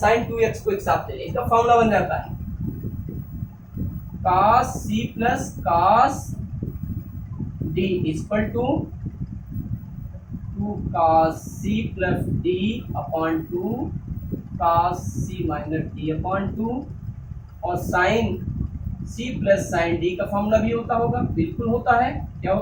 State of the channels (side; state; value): both; identical; correlation 1.00